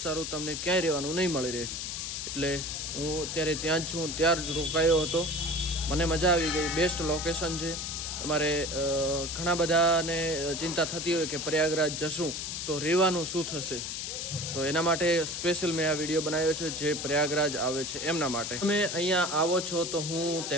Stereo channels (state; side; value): noise; left; hiss, 4 dB below the sound